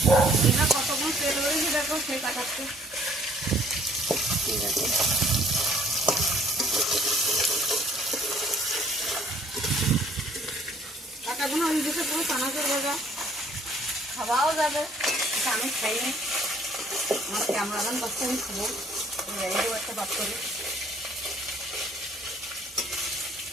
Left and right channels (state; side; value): normal; both; correlation 0.59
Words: কতক্ষণ তেল হয়েছে দেখো, সেই কাটাচ্ছে। ঠিক আছে, কাটাগুলো ওই দিকে পুরো চানাচুর ভাজা, খাওয়াও যাবে, আমি খাইনি, আমার ক্যামেরাম্যান পাচ্ছে, আমি খাবো, এইরকম একটা বাদ করি।